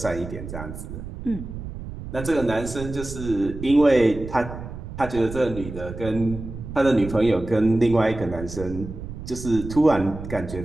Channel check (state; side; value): noise; right; rumble, 10 dB below the sound